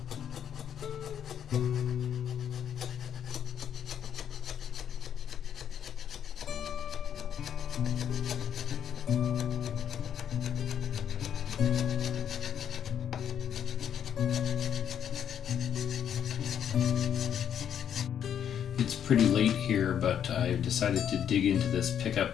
It's pretty late here, but I decided to dig into this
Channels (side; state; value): right; quieter; 9.1 dB